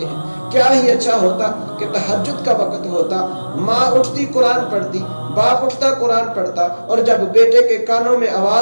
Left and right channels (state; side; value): inverted; both; correlation -1.00